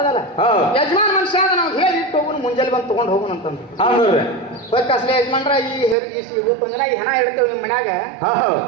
ಯಜಮಾನ್ ಮನುಷ್ಯ ಅದ, ನಾವು ಹೇಳಿ ಇಟ್ಟು ಹೋಗುನು, ಮುಂಜಾನೆ ಬಂದು ತಗೊಂಡ್ ಹೋಗುನು ಅಂತಂದ್ರು. ಅಸಲೇ ಯಜಮಾನ್ರ ಇವತ್ತಿನ ದಿನ ಈ ಹೆಣ ಇಡ್ತೇವೆ ನಿಮ್ ಮನ್ಯಾಗ,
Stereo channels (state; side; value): drops out; left; at 6.0 s